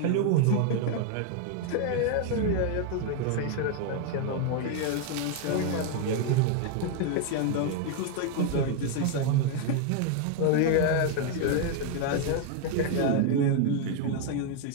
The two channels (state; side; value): different; both; correlation 0.00